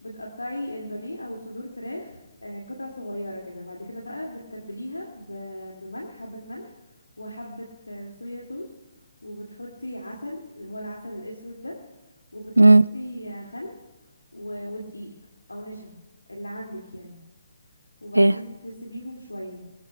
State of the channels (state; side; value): inverted; both; correlation -0.98